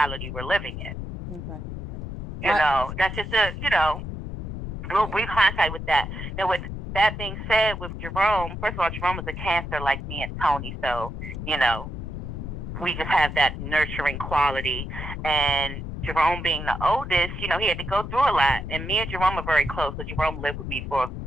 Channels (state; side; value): noise; left; rumble, 7 dB below the sound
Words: we're living in. Okay. You know, that's just a little brief hindsight with that. Now, with that being said, with Jerome, first of all, Jerome was a Cancer like me and Tony, so, you know, we just have that nurturing quality. And Jerome being the oldest, you know, he had to go through a lot. And me and Jerome are very close, so Jerome lived with me for